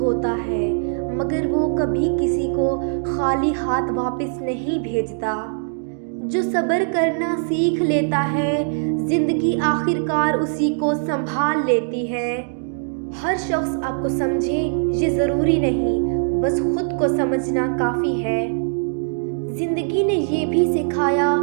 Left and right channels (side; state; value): left; silent; digital silence